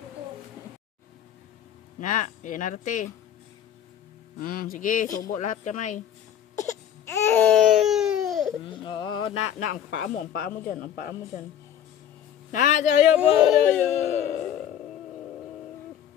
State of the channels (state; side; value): quieter; right; 10.0 dB